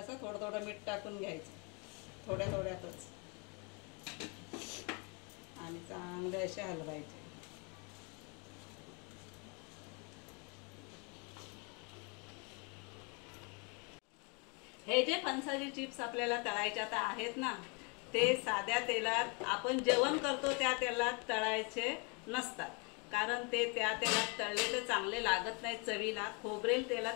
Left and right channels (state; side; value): quieter; right; 33.2 dB